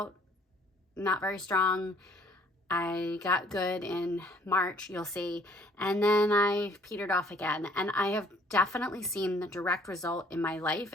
not very strong. I got good in March, you'll see, and then I petered off again. And I have definitely seen the direct result in my life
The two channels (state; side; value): normal; both; correlation 0.59